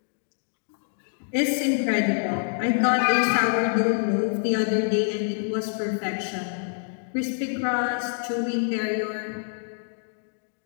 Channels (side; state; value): right; silent; digital silence